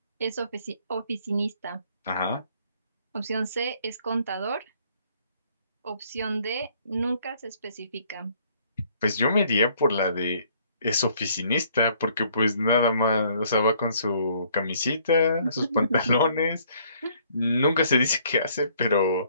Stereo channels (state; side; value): inverted; both; correlation -0.63